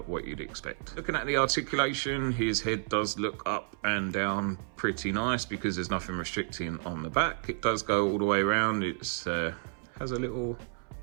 what you'd expect. Looking at the articulation, his head does look up and down pretty nice because there's nothing restricting on the back. It does go all the way around. It's has a little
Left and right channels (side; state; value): left; silent; 57 dB below the other